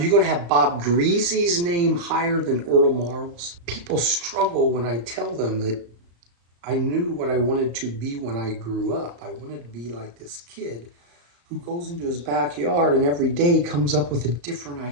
going to have Bob Greasy's name higher than Earl Marl's? People struggle when I tell them that I knew what I wanted to be when I grew up. I wanted to be like this kid who goes into his backyard and every day comes up with a different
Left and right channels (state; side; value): late; left; 35 ms